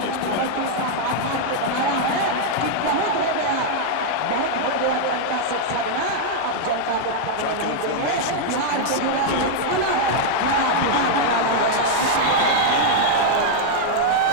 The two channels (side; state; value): both; different; correlation -0.01